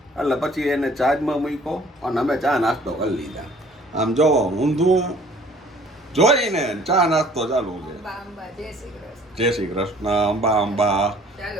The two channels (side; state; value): both; normal; correlation 0.54